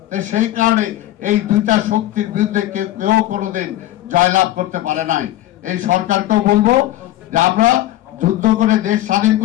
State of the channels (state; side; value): quieter; right; 14.7 dB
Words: সেই কারণে এই 2টা শক্তির বিরুদ্ধে কেউ কোনোদিন জয়লাভ করতে পারে নাই। এই সরকারকেও বলবো যে আমরা যুদ্ধ করে দেশ স্বাধীন